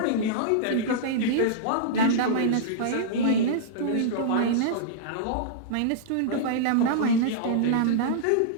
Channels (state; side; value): different; both; correlation -0.02